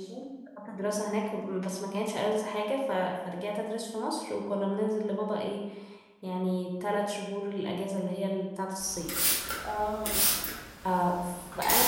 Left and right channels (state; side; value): identical; both; correlation 1.00